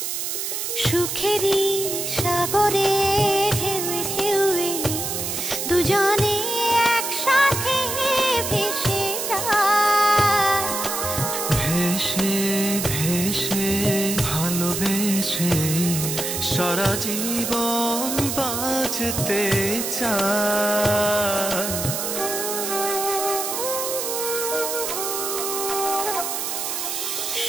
সুখেরই সাগরে ঢেউয়ে ঢেউয়ে দুজনে একসাথে ভেসে যায়। ভেসে ভেসে ভালোবেসে সারা জীবন বাঁচতে চাই।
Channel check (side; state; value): right; noise; hiss, 3 dB below the sound